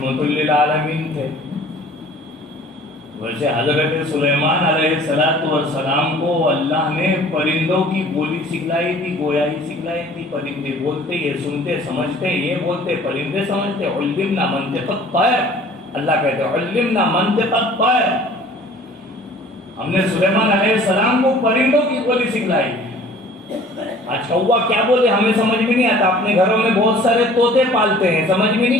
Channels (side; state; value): both; normal; correlation 0.50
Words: للعالمین تھے. ویسے حضرت سلیمان علیہ السلام کو اللہ نے پرندوں کی بولی سکھلائی تھی، گویائی سکھلائی تھی. پرندے بولتے، یہ سنتے سمجھتے، یہ بولتے پرندے سمجھتے. علمنا منطق الطیر، اللہ کہتے ہیں علمنا منطق الطیر، ہم نے سلیمان علیہ السلام کو پرندوں کی بولی سکھلائی. آج کوا کیا بولے ہمیں سمجھ میں نہیں آتا. اپنے گھروں میں بہت سارے طوطے پالتے ہیں، سمجھ میں